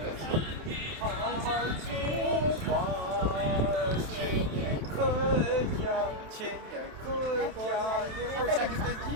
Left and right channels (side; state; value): left; late; 27 ms